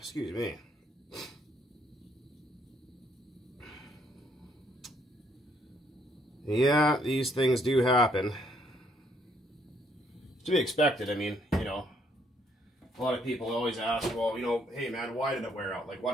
me. Yeah, these things do happen. To be expected. I mean, you know, a lot of people always ask, well, you know, hey man, why did it wear out? Like,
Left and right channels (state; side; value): normal; both; correlation 0.69